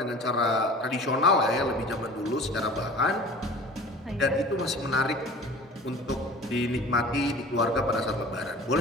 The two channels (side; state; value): both; normal; correlation 0.42